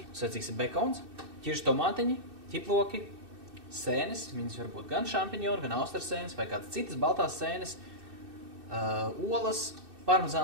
Vajadzīgs bekons, ķiršu tomātiņi, ķiploki, sēnes. Viņas var būt gan šampiņoni, gan austras sēnes vai kādas citas baltās sēnes, olas,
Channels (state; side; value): late; left; 2.6 ms